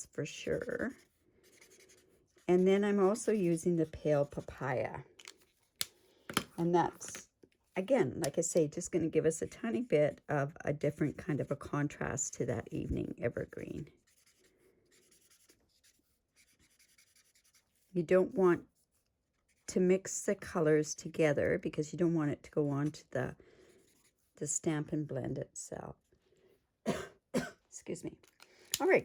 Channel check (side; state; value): both; identical; correlation 1.00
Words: for sure. And then I'm also using the Pale Papaya. And that's, again, like I say, just going to give us a tiny bit of a different kind of a contrast to that Evening Evergreen. You don't want to mix the colors together because you don't want it to go on to the Stampin' Blend itself. Excuse me. All